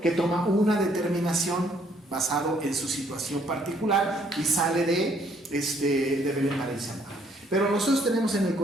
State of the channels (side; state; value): both; normal; correlation 0.65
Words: que toma una determinación basado en su situación particular y sale de Belén para irse a Moab. Pero nosotros tenemos en el